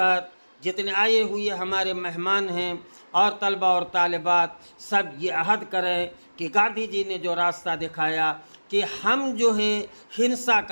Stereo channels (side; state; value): both; inverted; correlation -1.00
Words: جتنے آئے ہوئے ہمارے مہمان ہیں اور طلبہ اور طالبات، سب یہ عہد کریں کہ گاندھی جی نے جو راستہ دکھایا کہ ہم جو ہے ہنسا